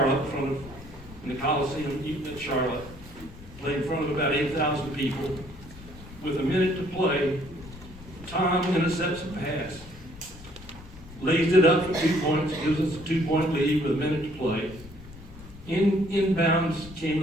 in the Coliseum at Charlotte, played in front of about 8,000 people. With a minute to play, Tom intercepts a pass, lays it up for 2 points, gives us a 2-point lead with a minute to play. Inbounds came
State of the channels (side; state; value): left; noise; rumble, 18 dB below the sound